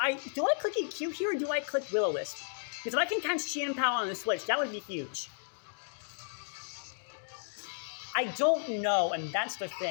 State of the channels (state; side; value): silent; right; digital silence